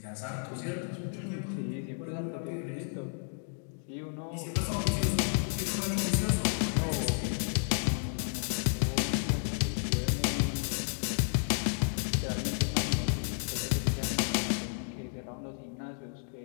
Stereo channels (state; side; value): silent; right; 56 dB below the other